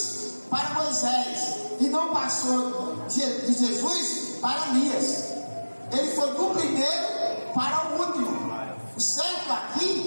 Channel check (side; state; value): both; inverted; correlation -1.00